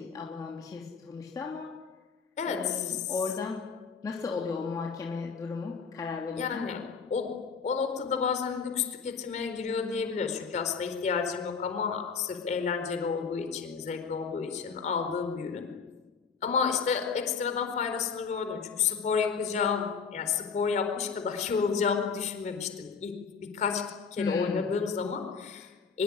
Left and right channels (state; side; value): quieter; right; 5.7 dB